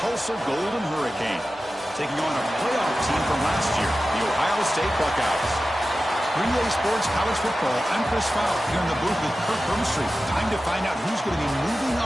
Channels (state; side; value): normal; both; correlation 0.94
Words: Golden Hurricane, taking on a playoff team from last year, the Ohio State Buckeyes. 3A Sports College Football, I'm Chris Fowler here in the booth with Kirk Hermstreet. Time to find out who's going to be moving